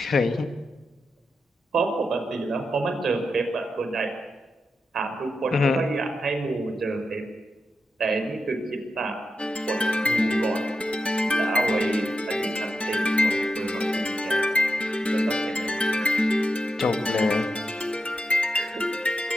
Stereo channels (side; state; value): both; normal; correlation 0.87